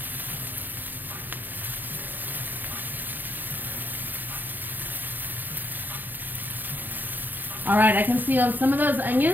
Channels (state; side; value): late; left; 0.088 ms